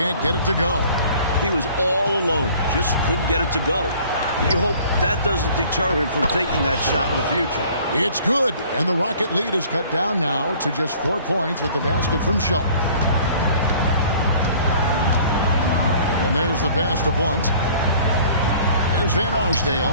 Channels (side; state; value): both; inverted; correlation -0.52